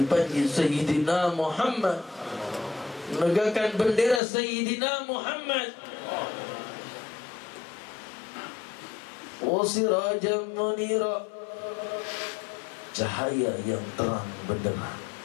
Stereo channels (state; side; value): drops out; right; at 4.2 s